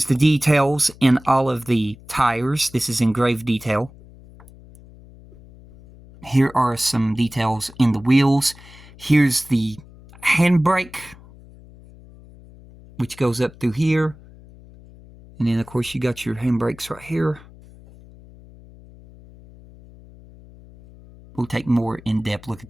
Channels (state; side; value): noise; left; hum, 22 dB below the sound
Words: the details in all of the tires. This is engraved detail. Here are some details in the wheels. Here's the handbrake, which goes up through here. And then, of course, you got your handbrakes right here. We'll take more in-depth look